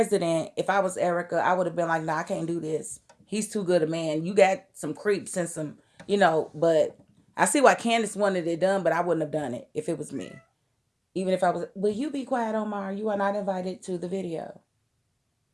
If I was Erica, I would have been like, nah, I can't do this. He's too good a man. You got some creeps and some, but I see why Candace wanted it done, but I wouldn't have done it if it was me. Even if I was, will you be quiet, Omar? You are not invited to the video.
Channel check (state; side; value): identical; both; correlation 1.00